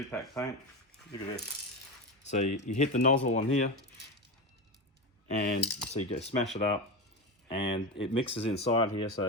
paint. Look at this. So you hit the nozzle on here, and so you go smash it up, and it mixes inside here.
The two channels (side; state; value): both; normal; correlation 0.19